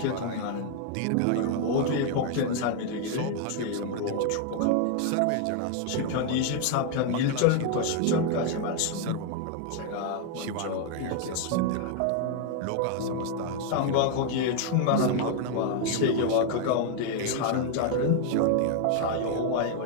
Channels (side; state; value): both; different; correlation 0.00